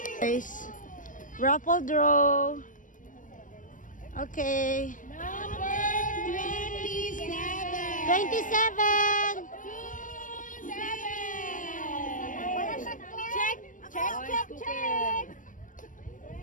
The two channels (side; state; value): right; late; 0.38 ms